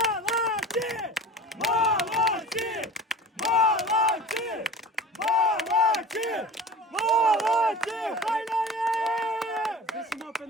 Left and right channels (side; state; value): both; normal; correlation 0.38